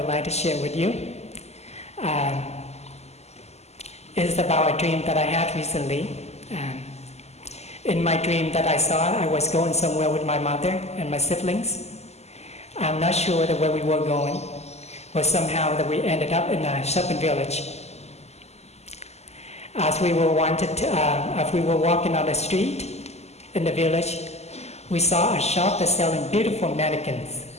like to share with you. It's about a dream that I had recently. In my dream that I saw, I was going somewhere with my mother and my siblings. I'm not sure where we were going, but somehow that we ended up in a shopping village. As we were walking on the street in the village, we saw a shop that's selling beautiful mannequins.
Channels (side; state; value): right; late; 0.31 ms